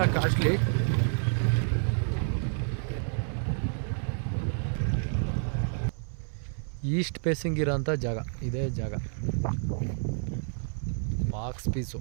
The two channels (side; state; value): left; silent; 58 dB below the other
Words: ಕಾಸ್ಟ್ಲಿ. ಈಸ್ಟ್ ಫೇಸಿಂಗ್ ಇರೋಂಥ ಜಾಗ ಇದೇ ಜಾಗ. Box piece